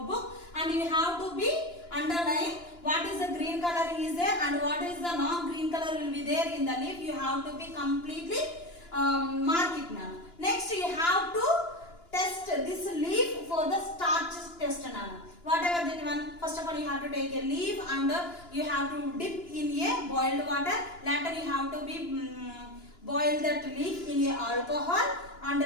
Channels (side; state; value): right; late; 2.9 ms